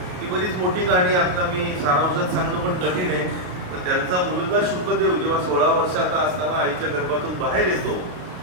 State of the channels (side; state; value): left; late; 33 ms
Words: ही बरीच मोठी कहाणी. आता मी सारांशात सांगणं पण कठीण आहे. पण त्यांचा मुलगा शुकदेव जेव्हा 16 वर्षाचा असताना आईच्या गर्भातून बाहेर येतो